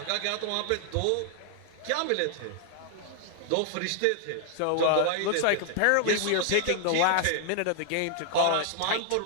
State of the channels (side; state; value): both; different; correlation 0.00